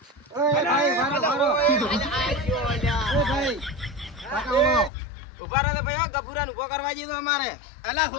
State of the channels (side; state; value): right; drops out; at 4.9 s